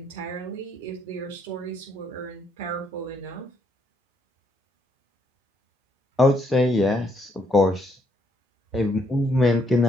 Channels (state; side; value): normal; both; correlation 0.72